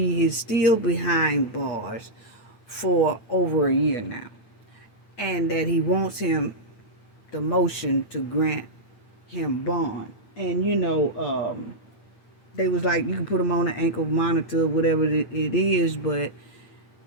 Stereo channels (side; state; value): right; late; 8.9 ms